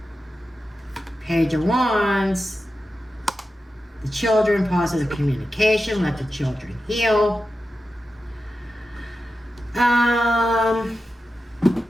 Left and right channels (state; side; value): normal; both; correlation 0.91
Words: Page of Wands. The children, positive communication. Let the children heal.